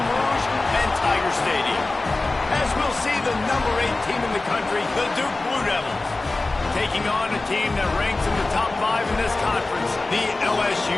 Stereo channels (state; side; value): quieter; right; 3.2 dB